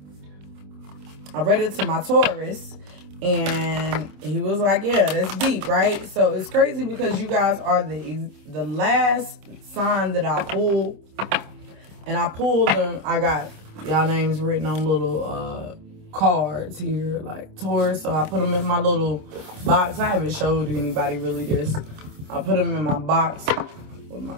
my Taurus, and he was like, yeah, that's deep, right? So it's crazy because you guys are the last sign that I pulled, and I pulled them. I got y'all names written on little cards here, like Taurus. So I put them in my little box. I haven't showed anybody really this. I put them in my box with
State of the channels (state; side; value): late; left; 26 ms